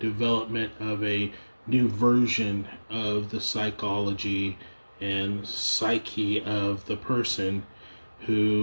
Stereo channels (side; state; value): both; inverted; correlation -1.00